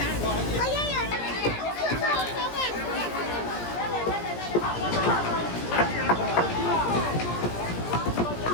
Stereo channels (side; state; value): right; late; 17 ms